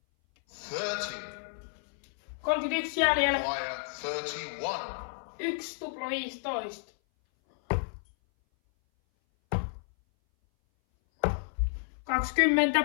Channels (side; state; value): right; silent; 57 dB below the other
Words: 31 jäljellä. Require 31. 1 tupla 15. 20.